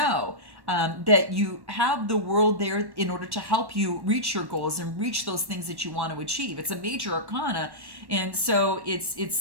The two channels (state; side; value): late; left; 1.1 ms